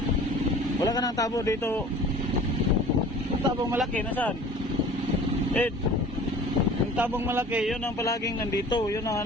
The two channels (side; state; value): both; normal; correlation 0.45